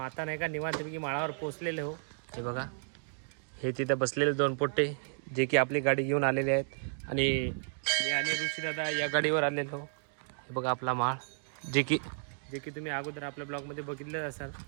नाही का निवांतपैकी माळावर पोहोचलेले हो. हे बघा, हे तिथे बसलेले दोन पोट्टे जे की आपली गाडी घेऊन आलेले आहेत, आणि मी आणि ऋषी दादा या गाडीवर आलेलो. हे बघा आपला माळ, जे की तुम्ही अगोदर आपल्या ब्लॉगमध्ये बघितलं असाल.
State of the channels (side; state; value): left; silent; digital silence